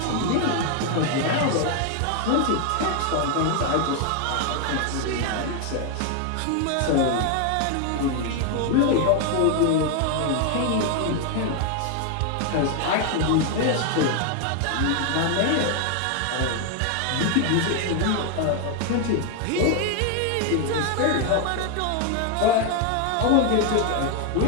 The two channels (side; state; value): both; different; correlation 0.01